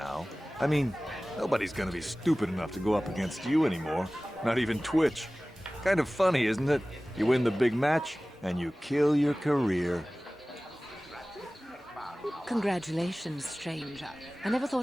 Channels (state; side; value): normal; both; correlation 0.98